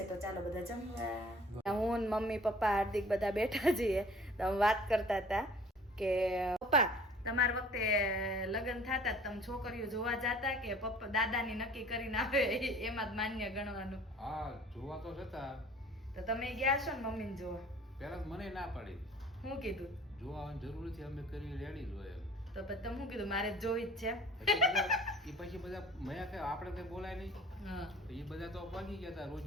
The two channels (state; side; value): normal; both; correlation 0.49